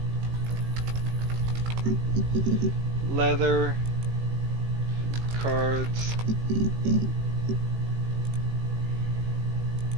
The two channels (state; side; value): late; left; 18 ms